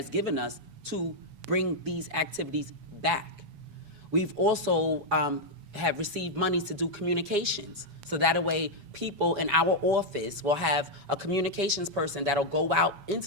given us to bring these activities back. We've also have received monies to do communications. So that way people in our office will have a communications person that'll go out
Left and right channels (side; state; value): left; late; 7.1 ms